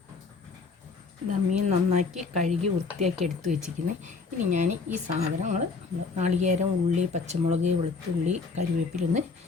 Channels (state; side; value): quieter; right; 4.5 dB